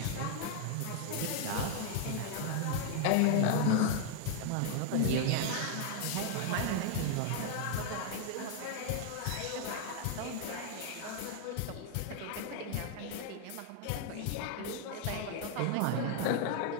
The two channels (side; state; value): both; different; correlation 0.00